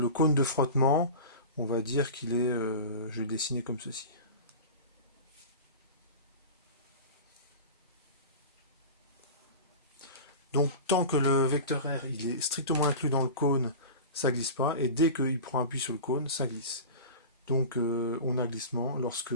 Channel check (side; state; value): both; inverted; correlation -0.31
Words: cône de frottement, on va dire qu'il est, je vais le dessiner comme ceci. Donc tant que le vecteur R il est strictement inclus dans le cône, ça glisse pas, et dès qu'il prend appui sur le cône, ça glisse. Donc on a glissement lorsque